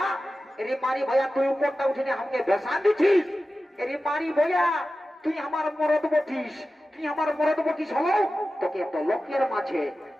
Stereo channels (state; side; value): normal; both; correlation 0.94